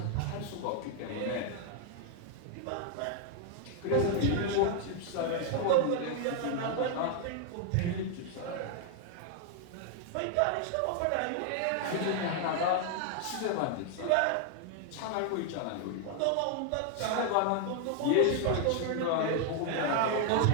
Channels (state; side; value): different; both; correlation 0.00